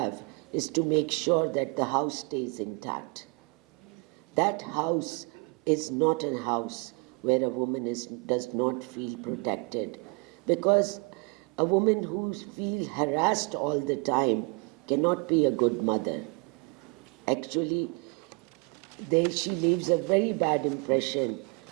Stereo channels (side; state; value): left; quieter; 32.2 dB